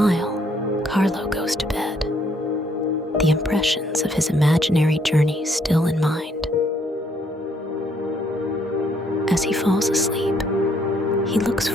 Carlo goes to bed, the impressions of his imaginary journey still in mind. As he falls asleep, he looks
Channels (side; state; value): both; normal; correlation 0.68